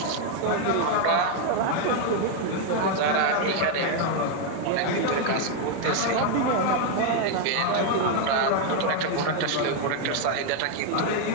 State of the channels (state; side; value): different; both; correlation 0.01